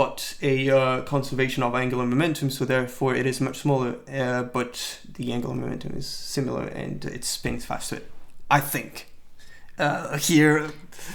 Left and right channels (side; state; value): both; identical; correlation 1.00